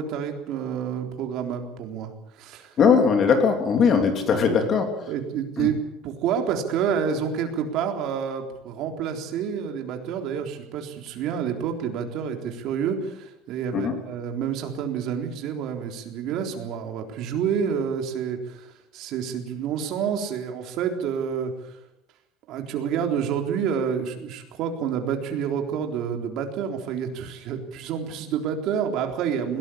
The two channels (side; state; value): both; normal; correlation 0.43